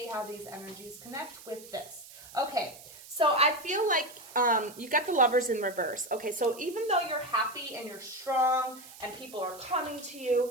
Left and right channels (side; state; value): right; noise; hiss, 18 dB below the sound